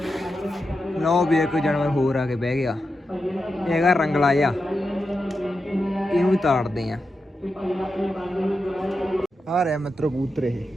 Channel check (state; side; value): normal; both; correlation 0.89